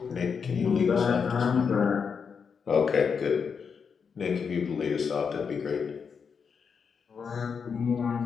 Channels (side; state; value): right; quieter; 6.1 dB